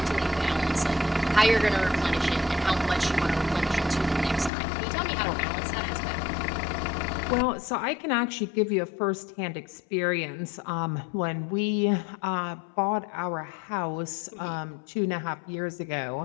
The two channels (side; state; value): right; drops out; at 4.5 s